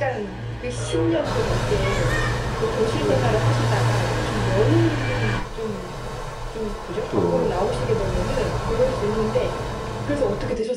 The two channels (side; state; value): both; identical; correlation 1.00